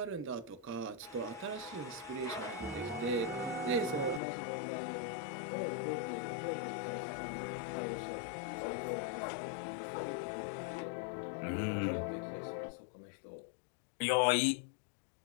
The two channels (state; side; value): drops out; right; at 4.2 s